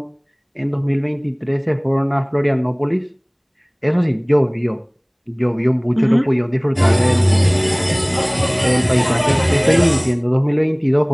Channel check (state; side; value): identical; both; correlation 1.00